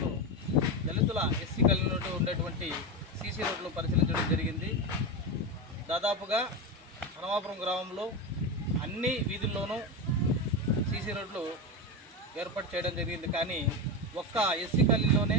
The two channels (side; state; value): both; normal; correlation 0.17